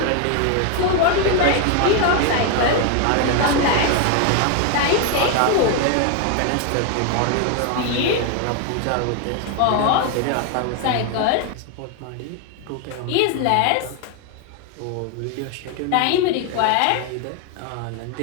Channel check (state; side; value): different; both; correlation 0.01